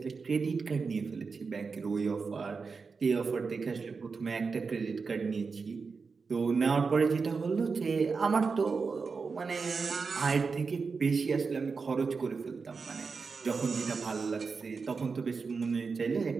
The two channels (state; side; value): quieter; left; 4.9 dB